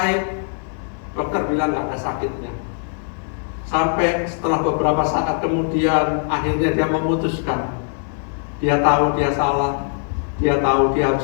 Dokter bilang nggak ada sakitnya. Sampai setelah beberapa saat kemudian, akhirnya dia memutuskan. Dia tahu dia salah, dia tahu dia harus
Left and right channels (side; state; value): right; silent; 60 dB below the other